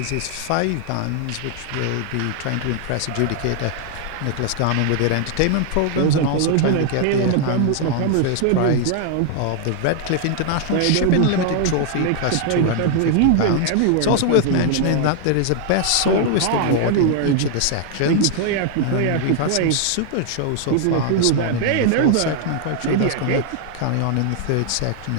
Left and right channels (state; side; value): different; both; correlation 0.00